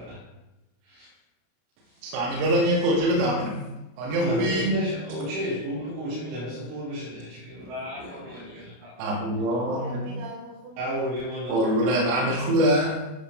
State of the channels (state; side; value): late; left; 33 ms